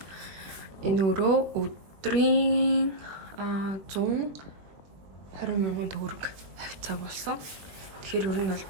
энэ өрөө өдрийн 120,000 төгрөг хавцаа болсон. Тэгэхээр ер нь бол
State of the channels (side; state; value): left; late; 21 ms